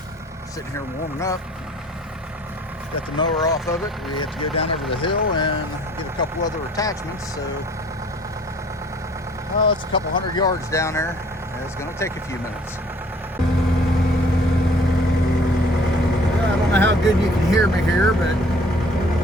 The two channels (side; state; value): both; normal; correlation 0.55